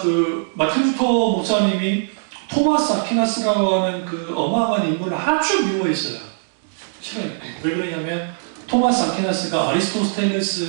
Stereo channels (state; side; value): silent; left; digital silence